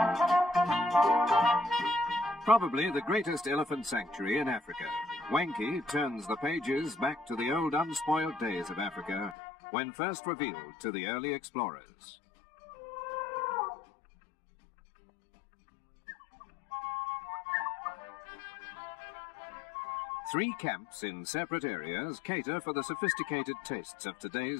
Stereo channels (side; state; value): right; drops out; at 9.3 s